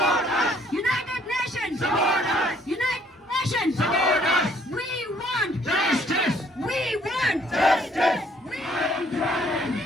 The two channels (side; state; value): both; normal; correlation 0.63